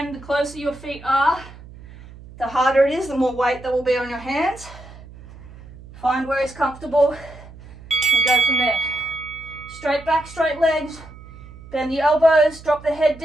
the closer your feet are, the harder it is, the more weight that will be on your hands. Find where it's comfortable and go from there. Straight back, straight legs. Bend the elbows, drop the head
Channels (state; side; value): noise; right; hum, 18 dB below the sound